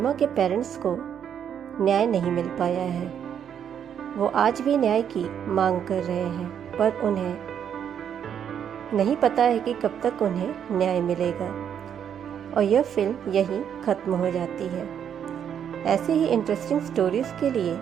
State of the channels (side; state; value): left; quieter; 8.6 dB